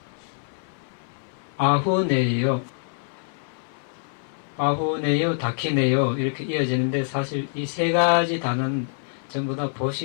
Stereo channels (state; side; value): silent; right; 58 dB below the other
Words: 아후네요, 아후네요, 다키네요 이렇게 이어지는데, 사실 이 세 가지 단어는 전부 다